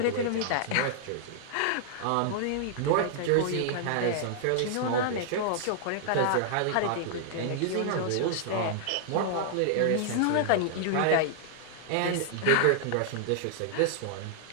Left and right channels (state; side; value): different; both; correlation -0.01